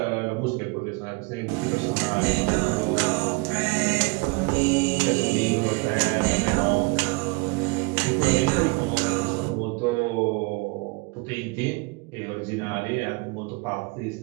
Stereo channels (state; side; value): quieter; left; 27.9 dB